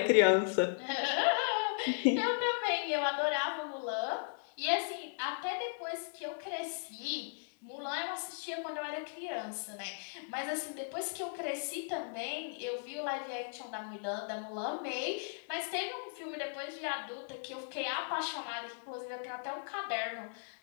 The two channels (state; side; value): silent; right; digital silence